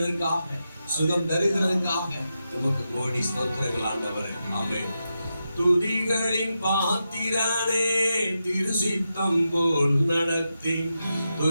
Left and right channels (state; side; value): inverted; both; correlation -0.88